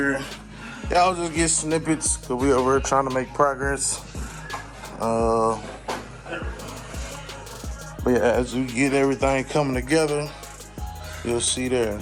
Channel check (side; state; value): both; identical; correlation 1.00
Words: Y'all just get snippets, cause we over here trying to make progress. But yeah, as we get everything coming together, you'll see there.